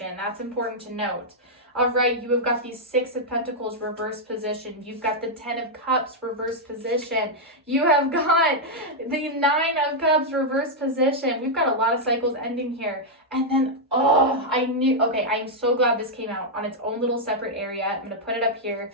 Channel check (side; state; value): both; normal; correlation -0.04